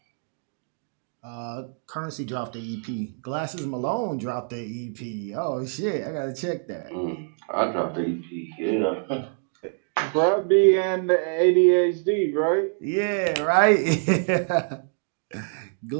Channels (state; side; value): silent; left; 61 dB below the other